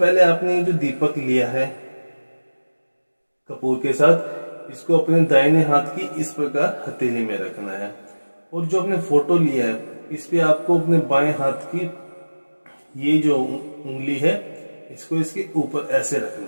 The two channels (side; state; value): both; inverted; correlation -1.00